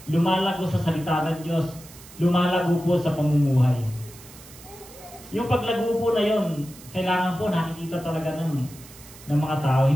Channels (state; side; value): noise; right; hiss, 19 dB below the sound